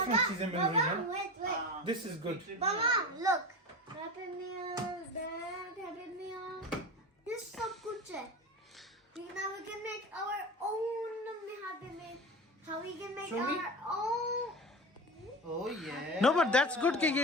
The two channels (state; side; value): normal; both; correlation 0.28